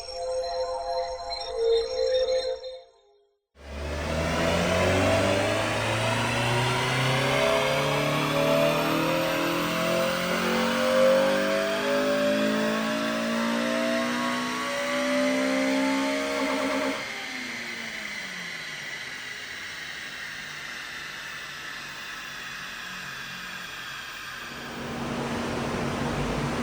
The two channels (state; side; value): identical; both; correlation 1.00